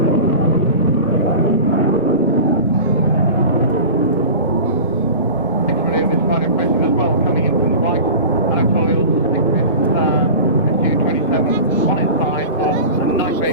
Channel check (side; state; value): both; inverted; correlation -0.33